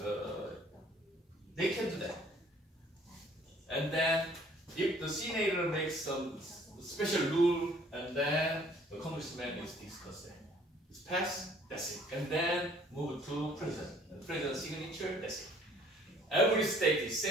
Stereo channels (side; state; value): both; normal; correlation 0.57